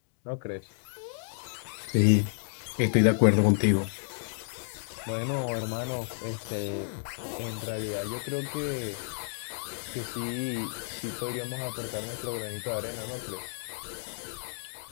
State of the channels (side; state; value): right; silent; digital silence